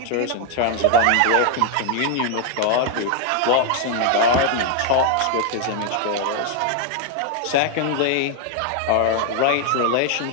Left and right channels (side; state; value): both; different; correlation 0.00